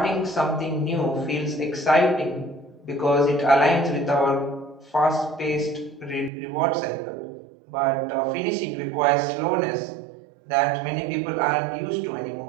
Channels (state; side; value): drops out; left; at 6.3 s